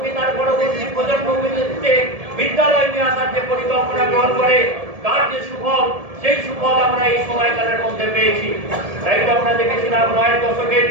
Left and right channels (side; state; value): left; late; 1.7 ms